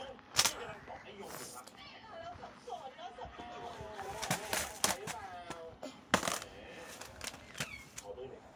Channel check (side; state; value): both; identical; correlation 1.00